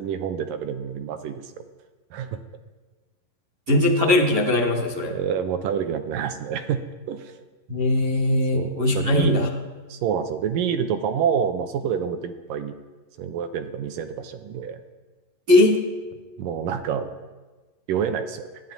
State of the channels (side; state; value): left; late; 11 ms